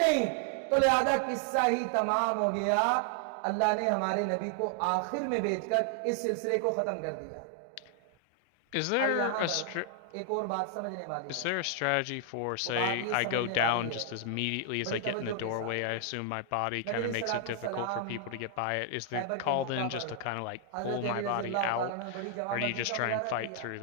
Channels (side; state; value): both; different; correlation 0.00